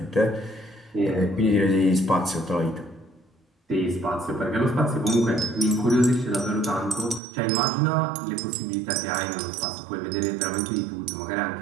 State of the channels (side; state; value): left; drops out; at 7.2 s